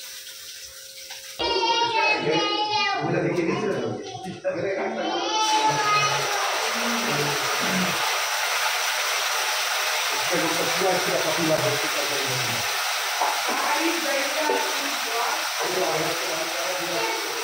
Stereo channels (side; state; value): both; identical; correlation 1.00